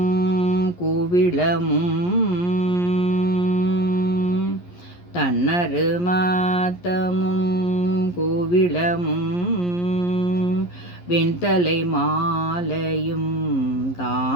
கூவிளமும் தன்னரு மாத்தமும் கோவிளமும் வெண்தலை மாலையும்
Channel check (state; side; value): late; right; 11 ms